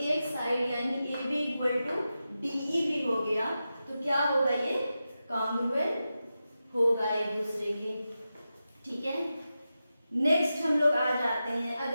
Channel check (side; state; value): both; inverted; correlation -0.91